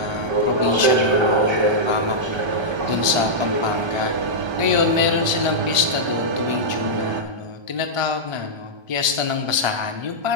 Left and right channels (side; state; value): left; late; 1.3 ms